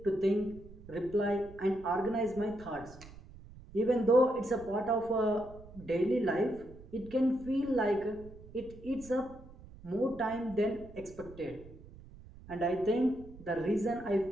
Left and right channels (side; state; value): right; noise; rumble, 18 dB below the sound